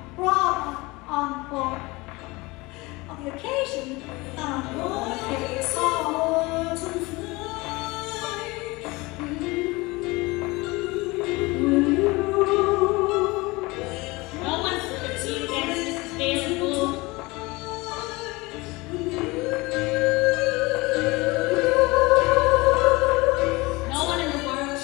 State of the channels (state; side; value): quieter; right; 23.2 dB